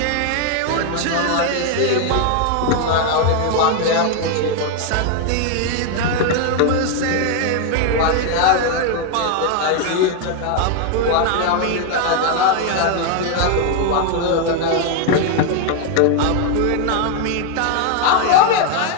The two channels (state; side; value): different; both; correlation 0.01